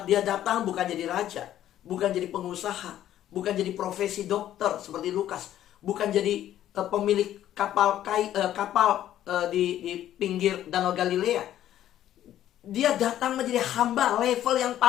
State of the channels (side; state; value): right; quieter; 12.1 dB